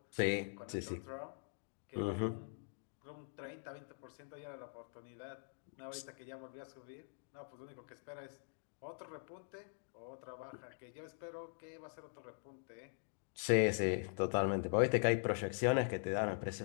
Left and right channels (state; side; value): silent; right; digital silence